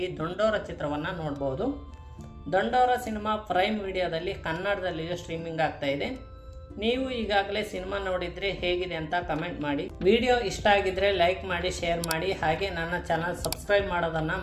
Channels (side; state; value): both; identical; correlation 1.00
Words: ದಂಡೋರ ಚಿತ್ರವನ್ನು ನೋಡಬಹುದು. ದಂಡೋರ ಸಿನಿಮಾ ಪ್ರೈಮ್ ವಿಡಿಯೋದಲ್ಲಿ ಕನ್ನಡದಲ್ಲಿಯೂ ಸ್ಟ್ರೀಮಿಂಗ್ ಆಗ್ತಾ ಇದೆ. ನೀವು ಈಗಾಗಲೇ ಸಿನಿಮಾ ನೋಡಿದರೆ ಹೇಗಿದೆ ಅಂತ ಕಮೆಂಟ್ ಮಾಡಿ. ವಿಡಿಯೋ ಇಷ್ಟ ಆಗಿದ್ರೆ ಲೈಕ್ ಮಾಡಿ, ಶೇರ್ ಮಾಡಿ, ಹಾಗೆ ನನ್ನ ಚಾನಲ್ ಸಬ್ಸ್ಕ್ರೈಬ್ ಮಾಡೋದನ್ನು